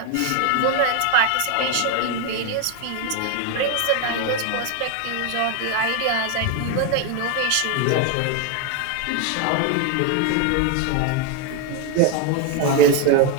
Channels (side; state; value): both; different; correlation 0.01